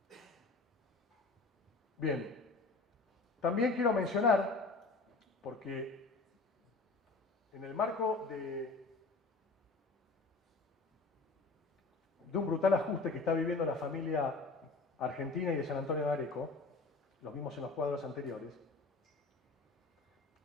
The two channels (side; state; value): right; quieter; 3.7 dB